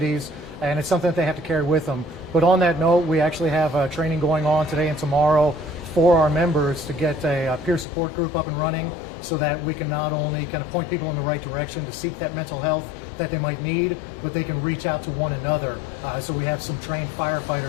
and it's something that they have to carry with them. But on that note, we actually have training going on today and tomorrow for our members to get a peer support group up and running, so that we can not only kind of point people in the right direction to seek that mental health that they might need, but they can reach out to one another. So we have some trained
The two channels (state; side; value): drops out; right; at 7.9 s